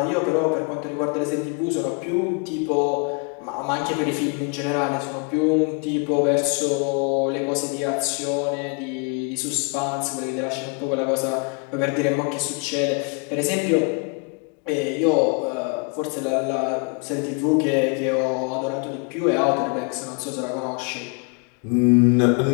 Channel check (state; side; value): quieter; right; 35.3 dB